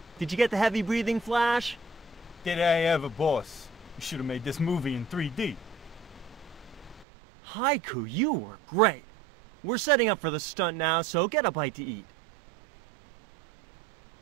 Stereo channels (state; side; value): drops out; left; at 7.1 s